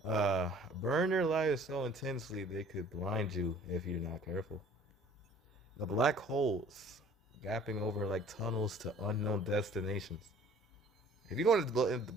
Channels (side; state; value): both; normal; correlation 0.52